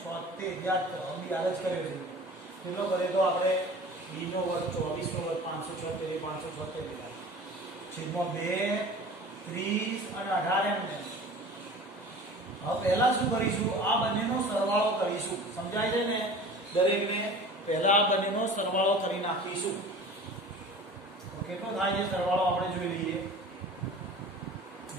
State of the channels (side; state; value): both; normal; correlation 0.41